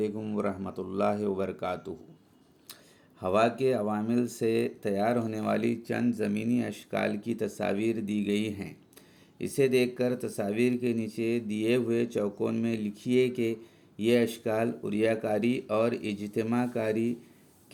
ورحمۃ اللہ وبرکاتہ۔ ہوا کے عوامل سے تیار ہونے والی چند زمینی اشکال کی تصاویر دی گئی ہیں۔ اسے دیکھ کر تصاویر کے نیچے دیے ہوئے چوکون میں لکھیے کہ یہ اشکال عریہ کاری اور اجتماع کاری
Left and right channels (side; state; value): both; identical; correlation 1.00